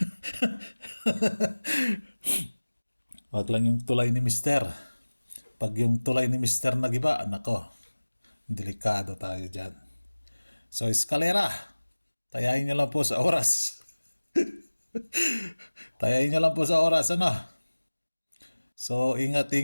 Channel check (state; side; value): inverted; both; correlation -1.00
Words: Wag lang yung tulay ni Mister. Pag yung tulay ni Mister nagiba, nako, delikado tayo dyan. So, eskalera, tayain nyo lang po sa oras. Tayain nyo lang po sa oras, ano. So,